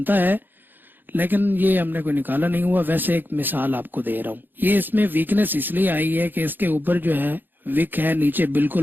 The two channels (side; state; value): left; late; 0.092 ms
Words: है, लेकिन ये हमने कोई निकाला नहीं हुआ। वैसे एक मिसाल आपको दे रहा हूँ। ये इसमें वीकनेस इसलिए आई है कि इसके ऊपर जो है विक है, नीचे